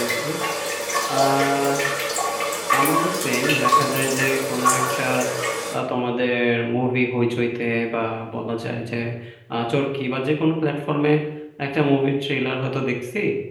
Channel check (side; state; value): both; identical; correlation 1.00